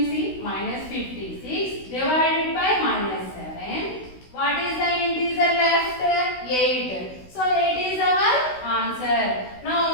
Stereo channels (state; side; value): late; right; 16 ms